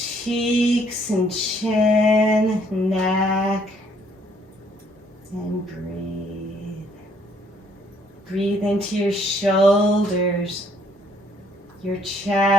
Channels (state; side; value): normal; both; correlation 0.65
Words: cheeks and chin, neck, and breathe. Breathe into your shoulders, your